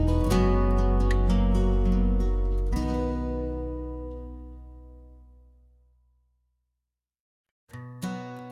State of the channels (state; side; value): identical; both; correlation 1.00